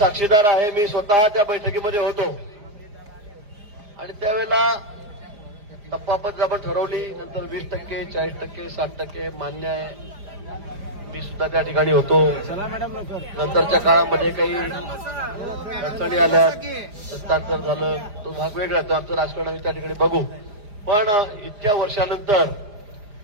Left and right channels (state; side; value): late; left; 4.9 ms